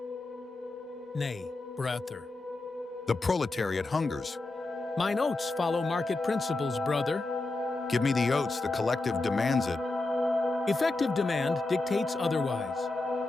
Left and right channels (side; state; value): right; quieter; 3.1 dB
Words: Nay, brother. The proletariat hungers. Mine oats follow market principles, brother. Give me the oats, the collective demands it. Effective demand dictates otherwise.